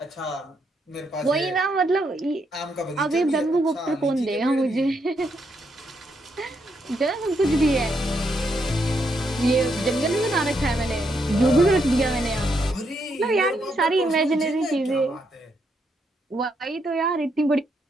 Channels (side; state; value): both; normal; correlation 0.78